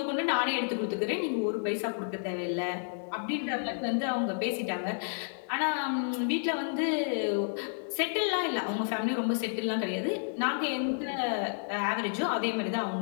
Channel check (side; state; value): right; silent; digital silence